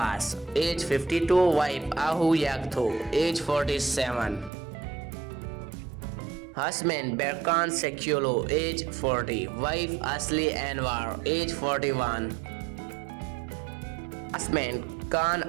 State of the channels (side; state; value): left; drops out; at 4.5 s